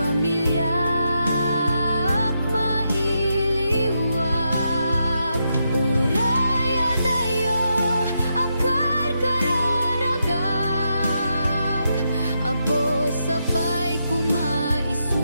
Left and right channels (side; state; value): both; inverted; correlation -0.83